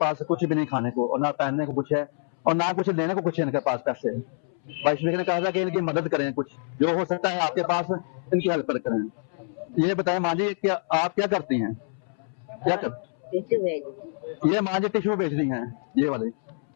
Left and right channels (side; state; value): right; silent; 61 dB below the other